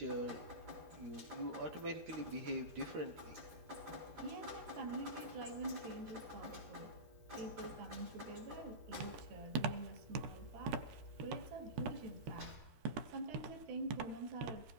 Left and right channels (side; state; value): left; late; 13 ms